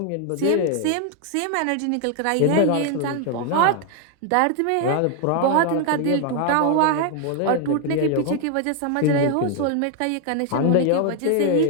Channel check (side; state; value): both; different; correlation 0.00